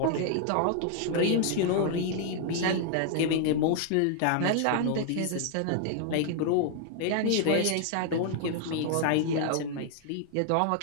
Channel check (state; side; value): different; both; correlation 0.00